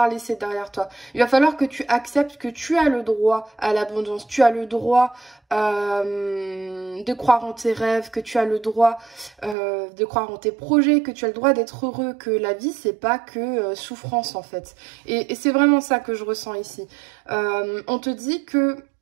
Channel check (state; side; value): drops out; left; at 9.6 s